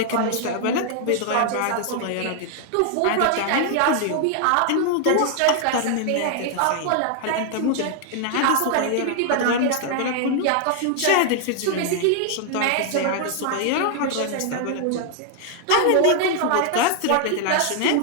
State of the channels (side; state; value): both; different; correlation 0.00